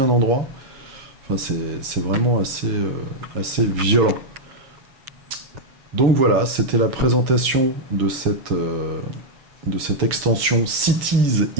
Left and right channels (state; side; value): late; left; 7.5 ms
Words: endroit. Enfin c'est vraiment assez violent. Donc voilà, c'était la présentation de cette extension Cities